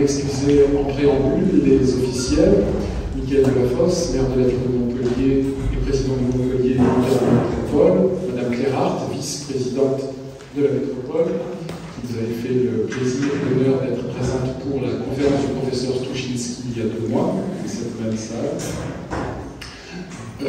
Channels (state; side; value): identical; both; correlation 1.00